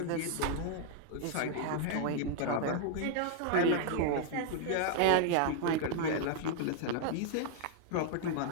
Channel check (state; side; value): different; both; correlation 0.00